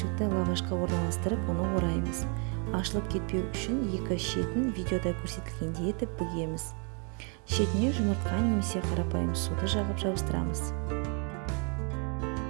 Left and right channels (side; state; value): left; quieter; 37.8 dB